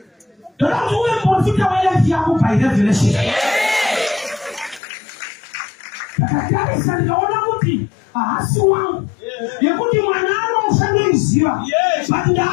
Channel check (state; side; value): drops out; right; at 4.8 s